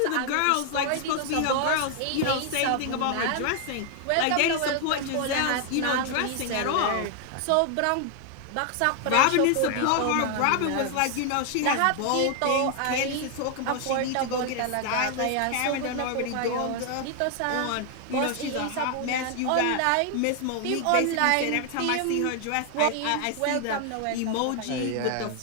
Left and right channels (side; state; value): both; different; correlation 0.00